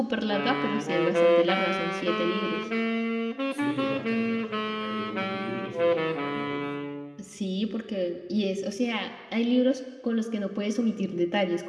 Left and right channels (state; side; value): identical; both; correlation 1.00